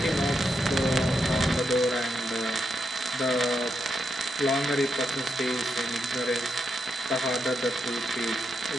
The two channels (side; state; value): both; normal; correlation 0.83